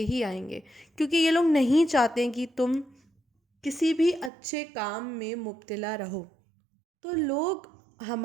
ہی آئیں گے. کیونکہ یہ لوگ نہیں چاہتے کہ تم کسی بھی اچھے کام میں مبتلا رہو. تو لوگ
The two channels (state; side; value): drops out; left; at 4.3 s